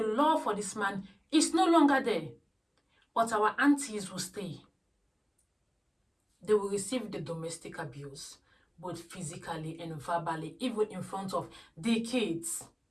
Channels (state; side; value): identical; both; correlation 1.00